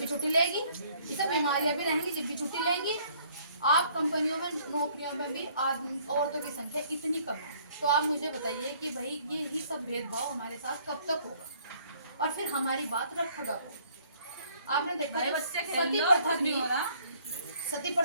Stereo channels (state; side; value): inverted; both; correlation -0.61